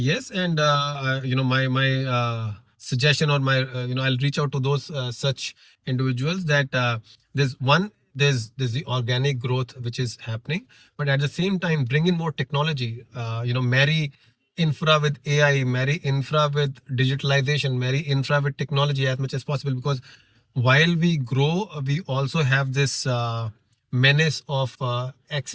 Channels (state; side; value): identical; both; correlation 1.00